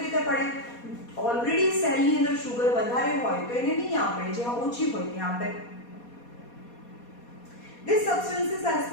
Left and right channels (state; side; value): late; right; 4.2 ms